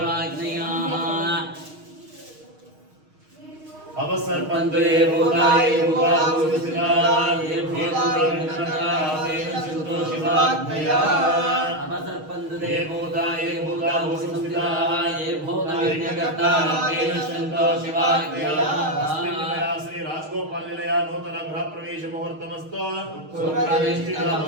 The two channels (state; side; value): late; left; 6.4 ms